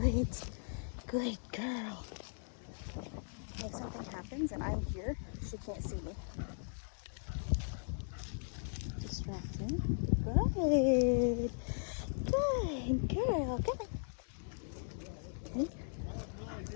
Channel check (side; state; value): right; silent; digital silence